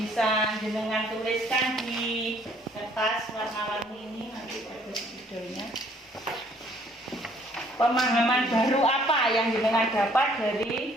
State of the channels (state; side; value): normal; both; correlation 0.61